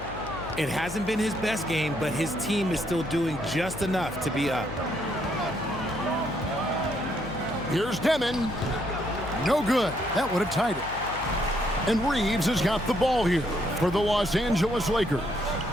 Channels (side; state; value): left; noise; hum, 13 dB below the sound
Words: It hasn't been his best game, but his team is still doing just enough to be up. Here's Demon. No good. That would have tied it. And Reeves has got the ball here for the Los Angeles Lakers.